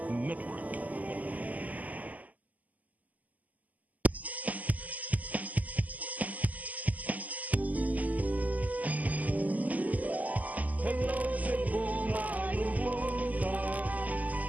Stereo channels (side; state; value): left; late; 0.078 ms